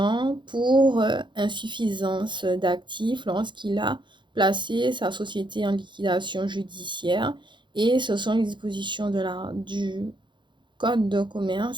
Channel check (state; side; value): late; left; 0.23 ms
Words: pour insuffisance d'actifs lorsqu'il a placé sa société en liquidation judiciaire. Et ce sont les dispositions du Code de